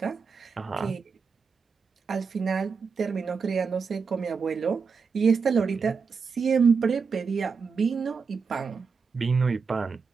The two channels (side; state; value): left; quieter; 5.3 dB